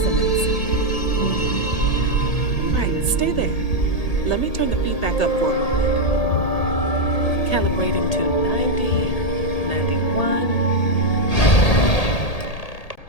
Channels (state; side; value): late; right; 1.8 ms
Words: Right, stay there. Let me turn the feedback up for a moment. Calibrating to 90, 91.